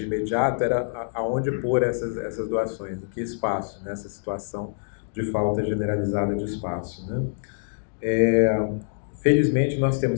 imediato, era aonde pôr essas doações, em que espaço, nessa situação de falta generalizada de espaço, né? Felizmente, nós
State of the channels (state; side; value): silent; right; digital silence